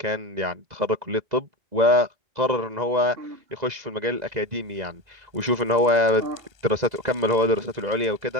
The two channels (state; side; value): late; left; 2.0 ms